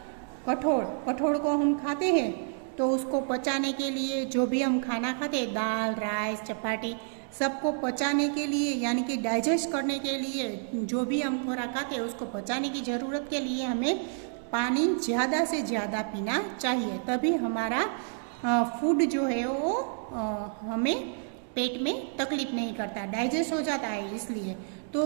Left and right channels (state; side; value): silent; left; 58 dB below the other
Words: कठोल को हम खाते हैं तो उसको पचाने के लिए, जो भी हम खाना खाते हैं, दाल, राइस, चपाती, सबको पचाने के लिए यानी कि डाइजेस्ट करने के लिए, जो भी हम खुराक खाते हैं उसको पचाने की ज़रूरत के लिए हमें पानी ज़्यादा से ज़्यादा पीना चाहिए। तभी हमारा फूड जो है वो हमें पेट में तकलीफ नहीं करता, डाइजेस्ट हो जाता है। इसलिए तो